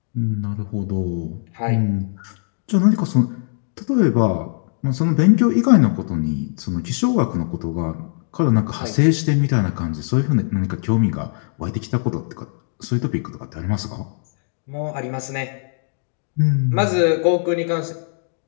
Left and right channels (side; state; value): right; silent; digital silence